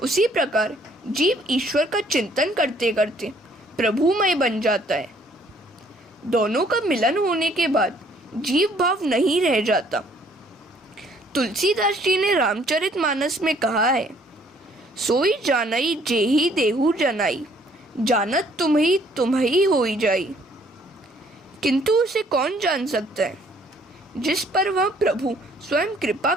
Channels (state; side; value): normal; both; correlation 0.62